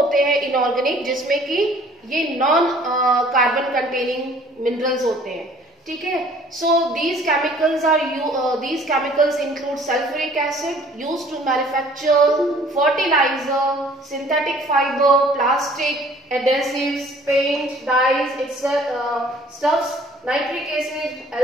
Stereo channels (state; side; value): normal; both; correlation 0.54